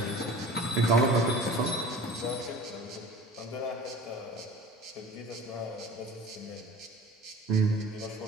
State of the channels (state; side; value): normal; both; correlation 0.42